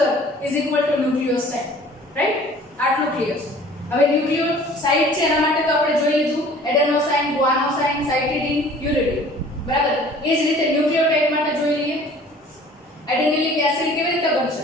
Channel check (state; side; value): normal; both; correlation 0.50